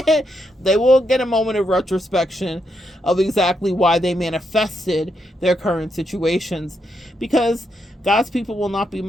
they will get a moment of retrospection of exactly why they manifested their current situations, because God's people will not be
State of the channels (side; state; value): both; normal; correlation 0.80